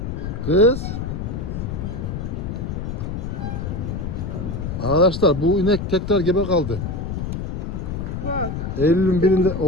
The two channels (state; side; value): noise; left; rumble, 4 dB below the sound